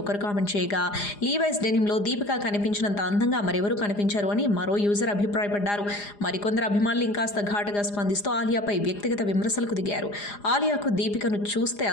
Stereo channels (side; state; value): right; late; 4.9 ms